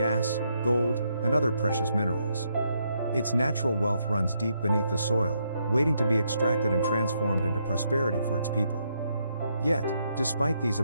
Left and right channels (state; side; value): inverted; both; correlation -0.76